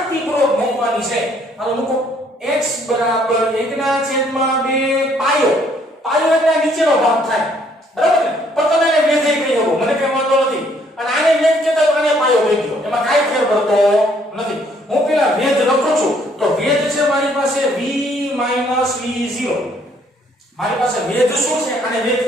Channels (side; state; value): both; normal; correlation 0.65